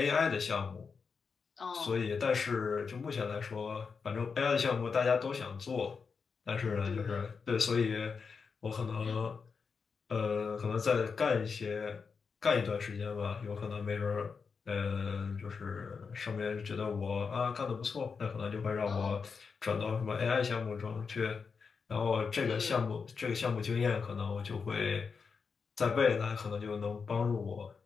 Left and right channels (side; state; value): right; quieter; 5.4 dB